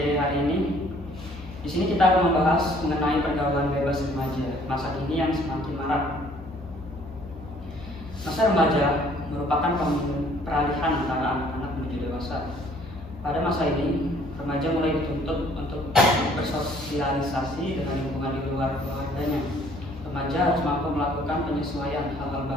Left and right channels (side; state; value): both; normal; correlation 0.59